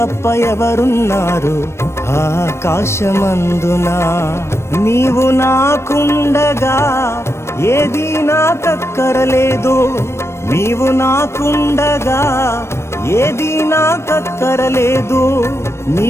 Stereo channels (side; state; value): right; late; 0.13 ms